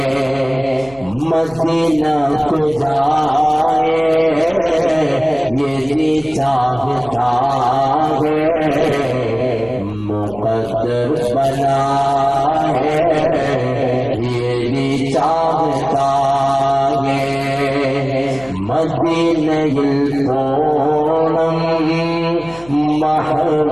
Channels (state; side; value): noise; left; hum, 22 dB below the sound